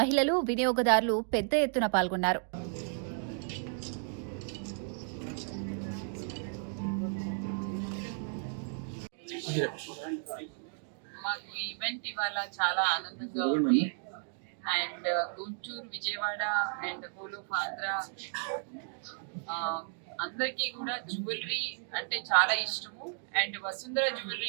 మహిళలు, వినియోగదారులు పెద్ద ఎత్తున పాల్గొన్నారు. మాకు ఈవెంట్ ఇవాళ చాలా ఆనందంగా ఉంది. And Guntur, Vijayawada and whole of Andhra అందరికీ కూడా జ్యువెలరీ అంటే చాలా ఇష్టము. అండ్ వసుంధర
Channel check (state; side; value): silent; left; 55 dB below the other